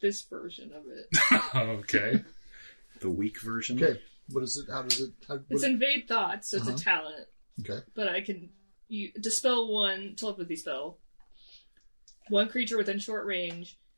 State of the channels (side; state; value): both; inverted; correlation -1.00